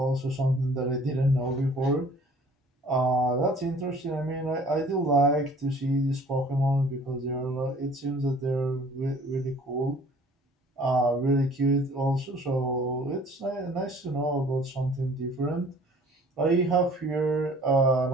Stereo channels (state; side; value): normal; both; correlation 0.52